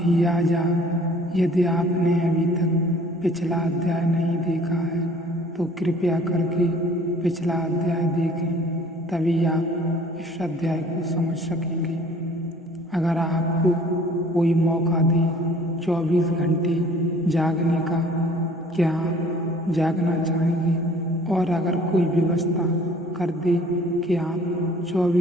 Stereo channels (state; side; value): normal; both; correlation 0.53